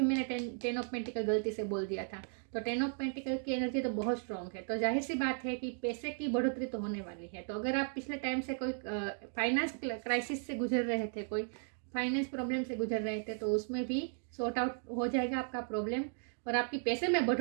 मैंने 10 ऑफ पेंटिकल गलती से बोल दिया था। तो 10 ऑफ पेंटिकल की एनर्जी तो बहुत स्ट्रांग है। तो जाहिर सी बात है कि पैसे की बढ़ोतरी तो होने वाली है। तो अगर आप पिछले टाइम से कोई फाइनेंस क्राइसिस से गुजर रहे थे, कोई फाइनेंस प्रॉब्लम से गुजर रहे थे, तो उसमें भी सॉर्ट आउट हो जाएगा आपका प्रॉब्लम। और आपकी पैसे में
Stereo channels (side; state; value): left; silent; 54 dB below the other